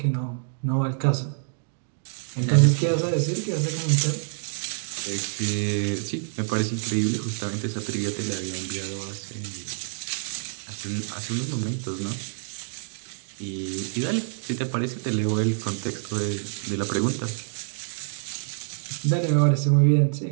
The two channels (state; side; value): silent; left; digital silence